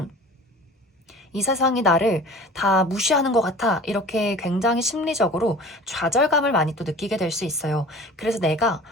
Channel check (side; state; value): both; normal; correlation 0.42